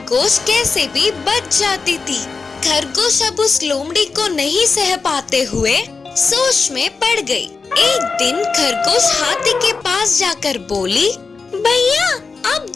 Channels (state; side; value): quieter; right; 4.6 dB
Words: कैसे भी बच जाती थी। खरगोश अब उस लोमड़ी को नहीं सह पाते हुए सोच में पड़ गई। एक दिन खरगोश हाथी के पास जाकर बोली, भैया आप